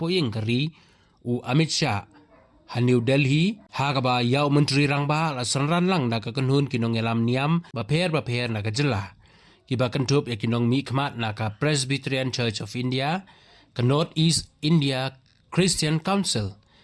kari Amit Shah New Delhi hagaba ya Menteri Rangba la sanran lang na kakenhun nongialam Niam baper na kejela kiba kentup ya kinong mikmat na ka Presbyterian Church of India ka North East India Christian Council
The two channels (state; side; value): identical; both; correlation 1.00